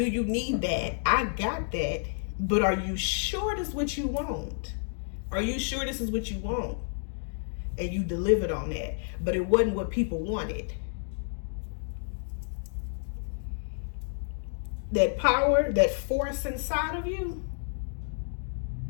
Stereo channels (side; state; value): right; silent; digital silence